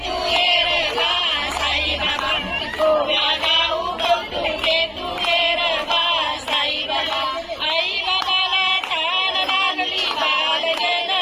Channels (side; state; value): both; identical; correlation 1.00